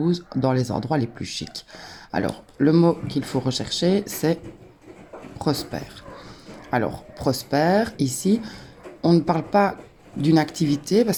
dans les endroits les plus chics. Alors, le mot qu'il faut rechercher, c'est prospère. Alors, prospère, ici, on ne parle pas d'une activité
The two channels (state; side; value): identical; both; correlation 1.00